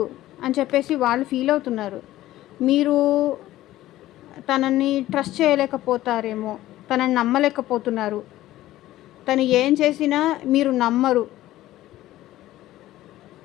అని చెప్పేసి వాళ్ళు ఫీల్ అవుతున్నారు. మీరు తనని ట్రస్ట్ చేయలేకపోతారేమో, తనని నమ్మలేకపోతున్నారు. తను ఏం చేసినా మీరు నమ్మరు.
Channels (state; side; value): quieter; right; 15.2 dB